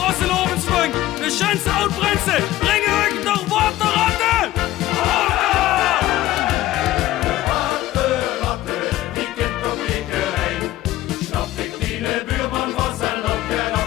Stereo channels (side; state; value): right; quieter; 15.3 dB